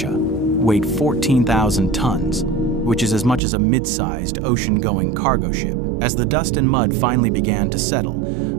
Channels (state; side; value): drops out; left; at 3.4 s